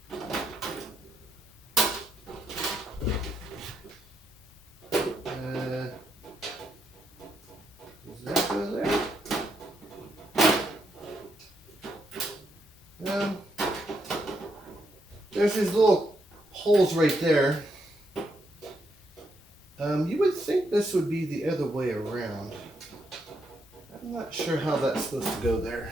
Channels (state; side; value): normal; both; correlation 0.78